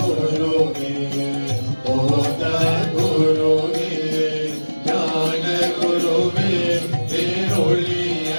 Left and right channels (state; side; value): inverted; both; correlation -1.00